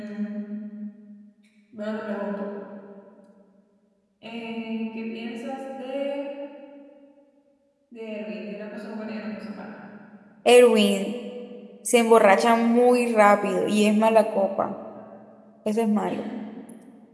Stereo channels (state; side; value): identical; both; correlation 1.00